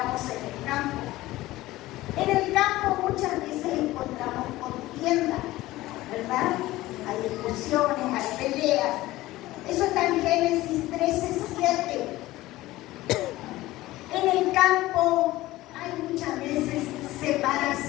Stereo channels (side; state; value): right; quieter; 17.4 dB